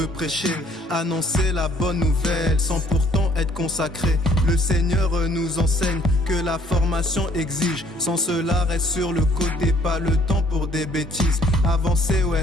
prêcher. Annoncer la bonne nouvelle sans pourtant être consacré. Le Seigneur nous enseigne que la formation exige. Sans cela reste sur le côté, pas le temps pour des bêtises. Avancer,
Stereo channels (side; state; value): both; normal; correlation 0.61